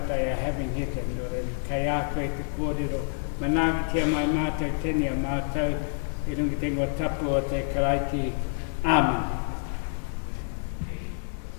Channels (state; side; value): silent; right; 57 dB below the other